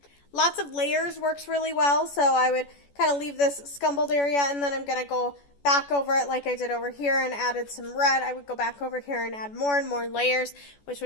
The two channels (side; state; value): right; late; 14 ms